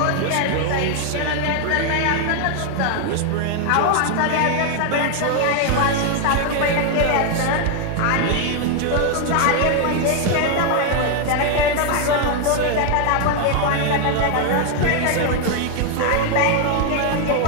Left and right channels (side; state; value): both; different; correlation 0.00